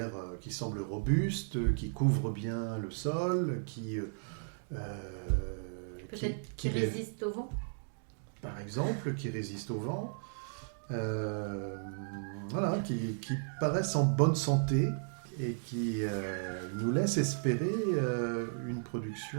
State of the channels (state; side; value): silent; left; digital silence